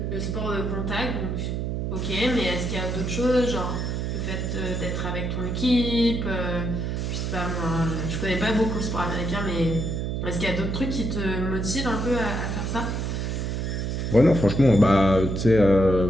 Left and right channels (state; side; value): noise; right; hum, 2 dB below the sound